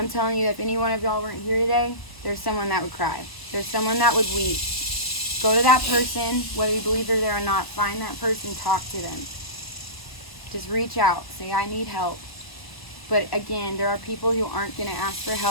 telling you, if any one of y'all weren't here today, there's someone that would cry. There's someone that would weep. Go to that person, whether you believe they're there or not, find that person, talk to them. Just reach out, say, I need help. But again, there are people who aren't going to ask for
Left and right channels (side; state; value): right; late; 1.0 ms